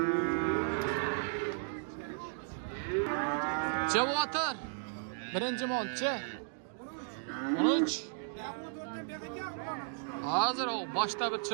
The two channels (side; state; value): left; silent; digital silence